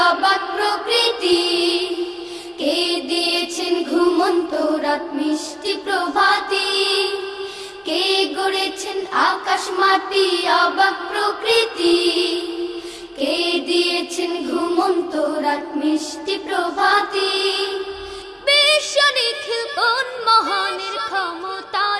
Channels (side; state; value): both; identical; correlation 1.00